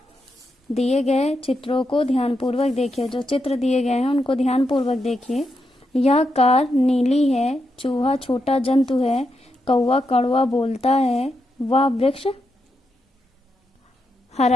दिए गए चित्रों को ध्यानपूर्वक देखिए। जो चित्र दिए गए हैं उनको ध्यानपूर्वक देखिए। यह कार नीली है, चूहा छोटा जंतु है, कौवा कड़वा बोलता है, वह वृक्ष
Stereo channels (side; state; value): both; normal; correlation 0.84